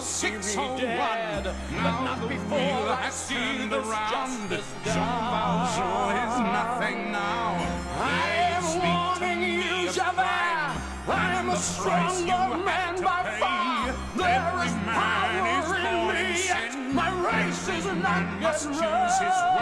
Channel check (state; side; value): identical; both; correlation 1.00